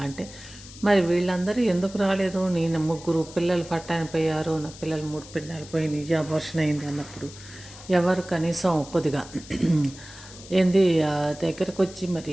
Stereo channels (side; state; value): left; noise; hiss, 17 dB below the sound